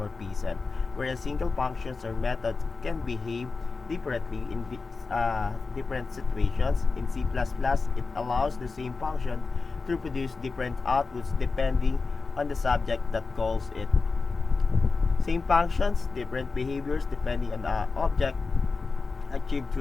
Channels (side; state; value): right; quieter; 4.2 dB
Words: where single functions or methods can behave differently in different situations. In C++, it allows the same function to produce different outputs depending on the subject that calls it. Same functions, different behaviors depending on the object, achieved